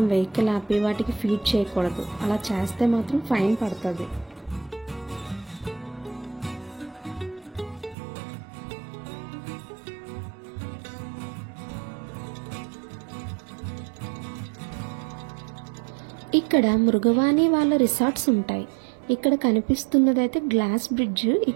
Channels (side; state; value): left; drops out; at 8.0 s